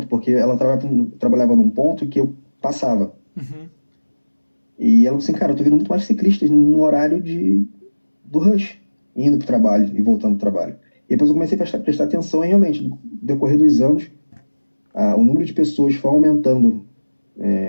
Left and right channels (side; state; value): both; inverted; correlation -1.00